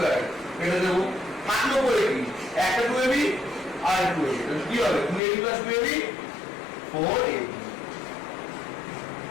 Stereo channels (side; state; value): right; drops out; at 5.2 s